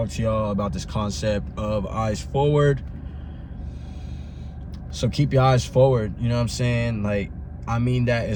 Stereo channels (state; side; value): identical; both; correlation 1.00